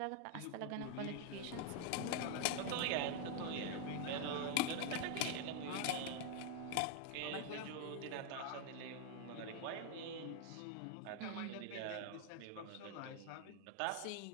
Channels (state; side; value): different; both; correlation 0.00